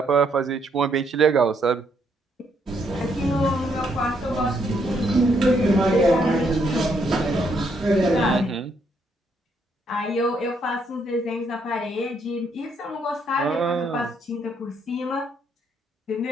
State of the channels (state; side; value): normal; both; correlation 0.73